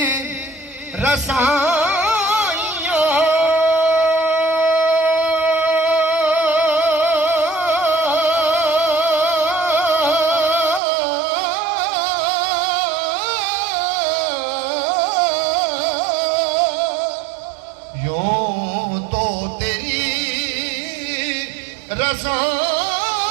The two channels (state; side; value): drops out; left; at 10.8 s